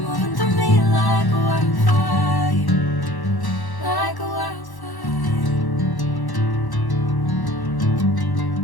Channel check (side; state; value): right; late; 1.1 ms